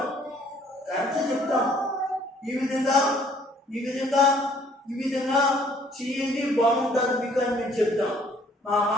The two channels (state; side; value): normal; both; correlation 0.60